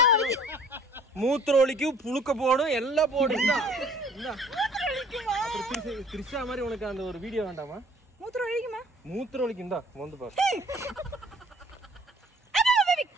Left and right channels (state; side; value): normal; both; correlation 0.54